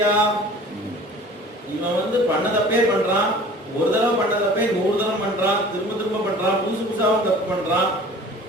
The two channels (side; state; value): both; normal; correlation 0.45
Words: இவன் பண்ண தப்பே பண்றான், ஒரு தடவை பண்ண தப்பே 100 தடவை பண்றான், திரும்ப திரும்ப பண்றான், புதுசு புதுசாவும் தப்பு பண்றான்.